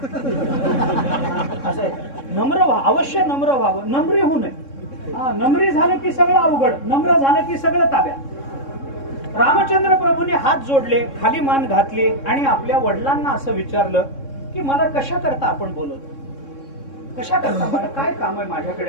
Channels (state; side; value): late; right; 3.6 ms